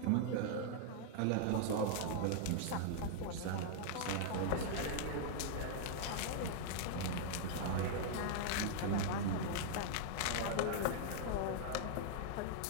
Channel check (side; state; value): both; different; correlation -0.01